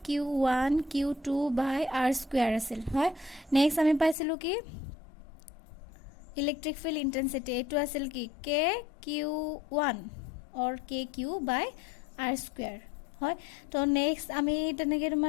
Q2 বাই আৰ স্কুৱেৰ আছিল, হয়। নেক্সট আমি পাইছিলোঁ কি ইলেক্ট্ৰিক ফিল্ড ইণ্টেনচিটি, এইটো আছিল কি KQ1 or KQ by R square, হয়। তো নেক্সট আমি তেনেকৈ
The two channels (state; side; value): drops out; right; at 4.2 s